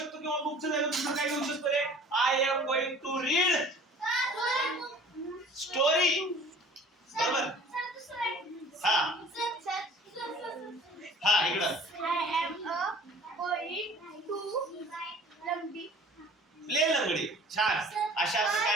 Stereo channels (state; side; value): normal; both; correlation 0.48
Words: किंवा बुकचं जागी दुसरं काय घेऊ शकतो रे? I am going to read story. बरोबर. हा हा इकडं प्ले लंगडी. छान. अशा